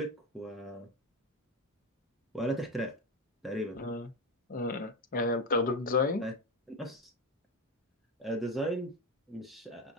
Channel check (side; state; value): both; normal; correlation 0.16